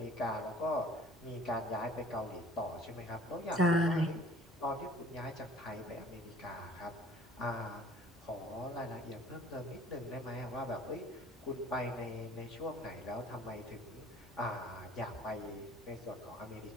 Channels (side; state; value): both; normal; correlation 0.51